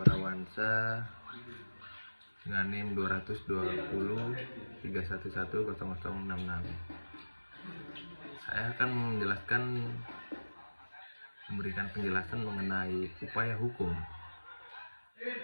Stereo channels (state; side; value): inverted; both; correlation -1.00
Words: dengan NIM 220 311 0066. Saya akan memberikan penjelasan mengenai upaya hukum.